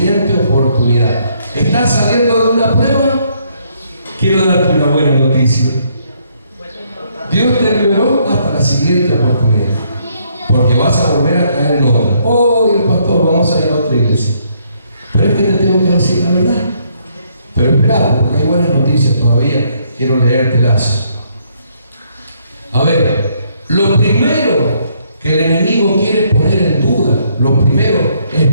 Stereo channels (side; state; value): both; inverted; correlation -0.70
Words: oportunidad. ¿Estás saliendo de una prueba? Quiero darte una buena noticia. Dios te liberó hasta la siguiente oportunidad. Porque vas a volver a caer en otra. Oh, el pastor, vamos a ir a otra iglesia. Pero es que te tengo que decir la verdad. Pero espera, porque hay buenas noticias todavía. Quiero leértelas. A ver, lo primero que el enemigo quiere poner en duda, lo primero es